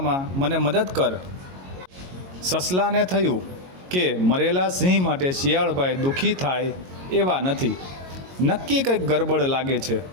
મને મદદ કર। સસલાને થયું કે મરેલા સિંહ માટે શિયાળભાઈ દુઃખી થાય એવા નથી, નક્કી કંઈક ગરબડ લાગે છે।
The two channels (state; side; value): late; left; 22 ms